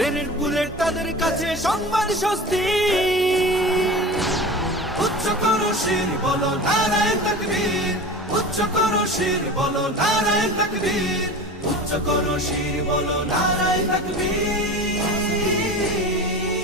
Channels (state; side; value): normal; both; correlation 0.33